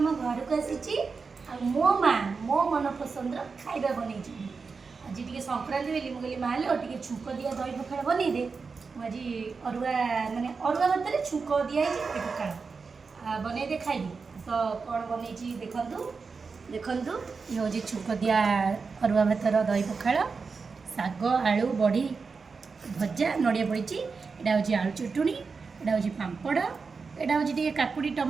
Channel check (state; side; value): quieter; left; 4.8 dB